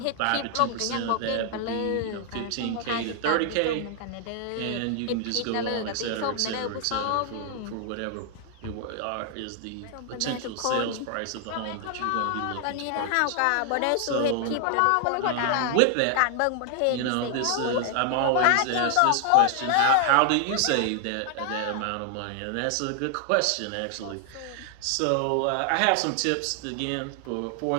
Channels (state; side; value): different; both; correlation 0.00